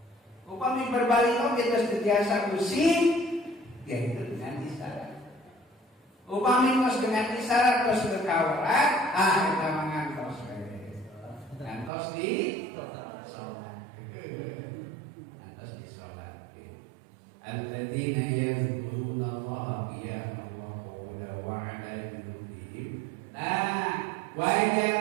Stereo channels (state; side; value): drops out; left; at 11.9 s